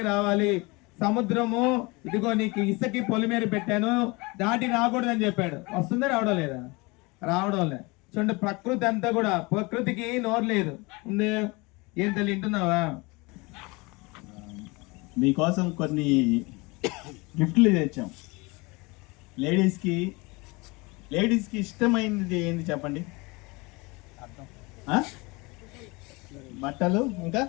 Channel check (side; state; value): right; quieter; 25.7 dB